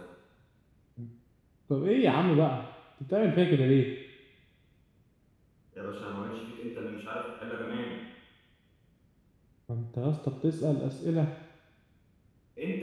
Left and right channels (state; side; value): identical; both; correlation 1.00